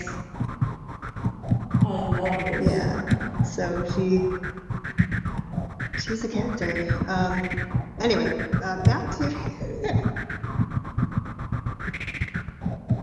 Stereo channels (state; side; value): identical; both; correlation 1.00